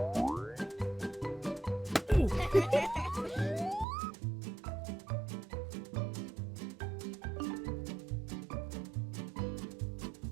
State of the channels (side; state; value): left; drops out; at 3.9 s